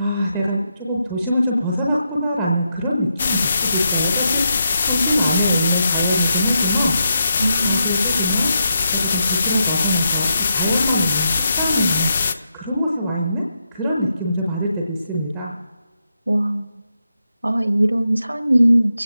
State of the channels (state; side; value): inverted; both; correlation -0.84